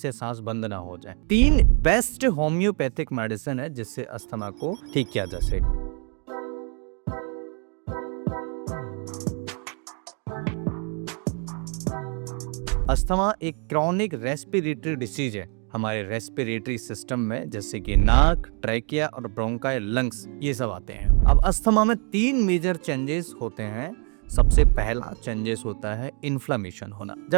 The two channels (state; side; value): quieter; left; 37.7 dB